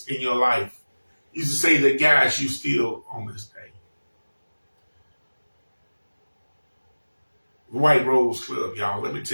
in your life used to say that guides you still on this day? White Rose Club, y'all. Let me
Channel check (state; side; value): inverted; both; correlation -1.00